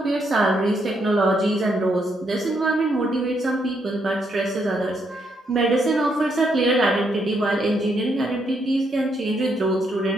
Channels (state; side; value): normal; both; correlation 0.76